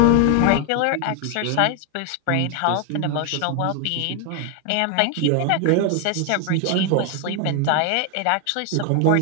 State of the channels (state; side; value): different; both; correlation 0.01